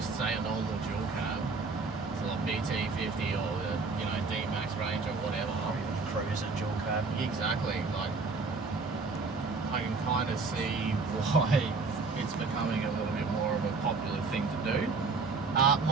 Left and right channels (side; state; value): left; quieter; 4.2 dB